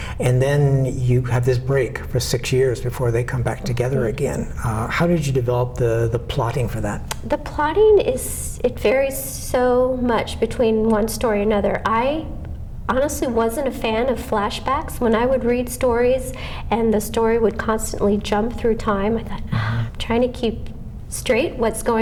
and then you have this break for 6 years before they come back together again. How did you develop the plotting for that? The plotting it varies so much between one story and another. I honestly wasn't a fan of flashbacks. When I would read stories and the story would constantly jump through time, I thought, I'm trying to keep straight what's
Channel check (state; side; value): identical; both; correlation 1.00